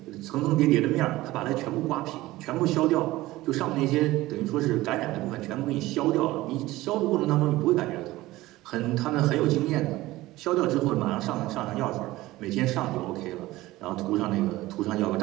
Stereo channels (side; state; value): left; quieter; 17.8 dB